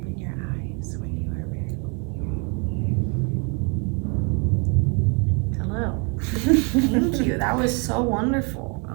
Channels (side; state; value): left; quieter; 34.2 dB